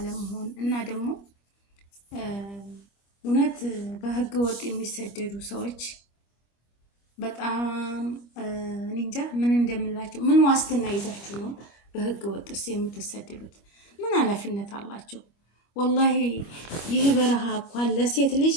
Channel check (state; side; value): late; right; 25 ms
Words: እና ደግሞ እውነት በህገ ወጥ የሚሰደዱ ሰዎች በጣም እንጃ ምን እንደምላቸው። ምን ዋስትና ይዛችሁ ነው በህገ ወጥስ የምትሰደዱት? ምን ኃላፊነት አላቸው? ወላሂ ይህ በረሃ እንኳን ለሴት ልጅ